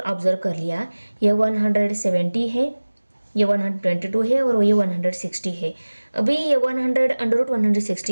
ऑब्जर्व कर लिया, ये 170 है, ये 122 है और ये 160 है। अभी ये 100 अंडर रूट 160,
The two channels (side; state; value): both; inverted; correlation -1.00